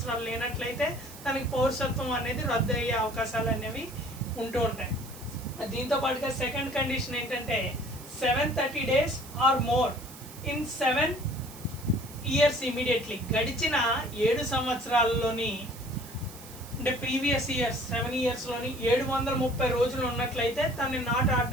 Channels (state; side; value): noise; right; hiss, 17 dB below the sound